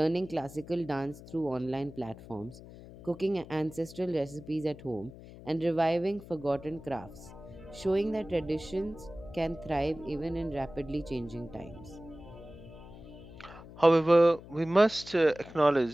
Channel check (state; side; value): noise; left; hum, 17 dB below the sound